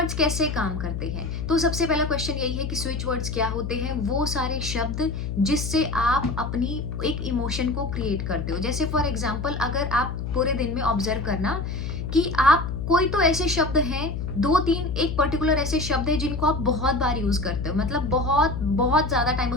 कैसे काम करते हैं, तो सबसे पहला क्वेश्चन यही है कि स्विच वर्ड्स क्या होते हैं। वो सारे शब्द जिससे आप अपनी एक इमोशन को क्रिएट करते हो। जैसे फॉर एग्जांपल, अगर आप पूरे दिन में ऑब्जर्व करना कि आप कोई तो ऐसे शब्द हैं, दो तीन एक पर्टिकुलर ऐसे शब्द है जिनको आप बहुत बार यूज करते हो, मतलब बहुत बहुत ज्यादा टाइम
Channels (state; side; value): noise; left; hum, 4 dB below the sound